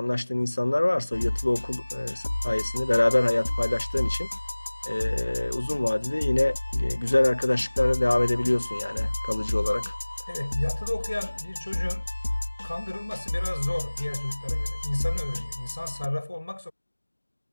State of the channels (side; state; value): both; inverted; correlation -1.00